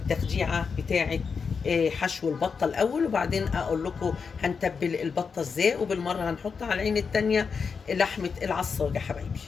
بتاعة حشو البطة الأول، وبعدين أقول لكم هنتبل البطة ازاي، وبالمرة هنحط على العين التانية لحمة العصاج يا حبايبي.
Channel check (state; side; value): quieter; right; 5.6 dB